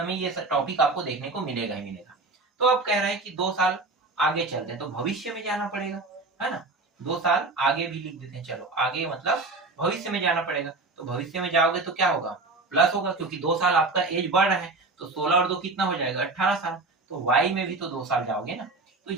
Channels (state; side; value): quieter; left; 3.4 dB